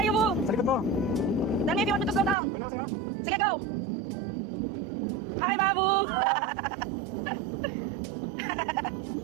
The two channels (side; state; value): left; drops out; at 2.4 s